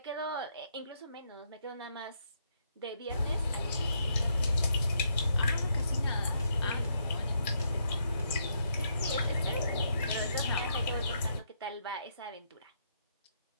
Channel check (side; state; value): both; inverted; correlation -0.76